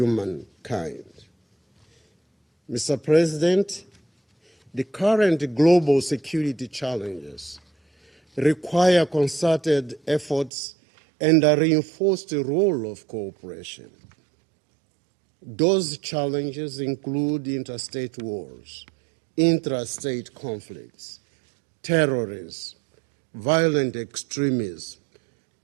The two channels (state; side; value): drops out; left; at 10.5 s